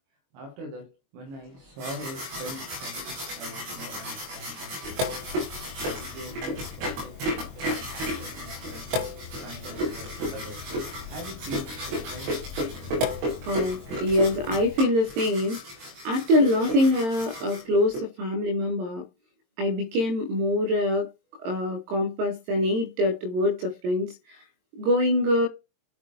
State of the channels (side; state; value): left; late; 22 ms